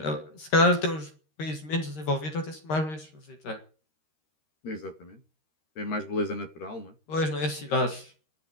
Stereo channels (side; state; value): right; late; 13 ms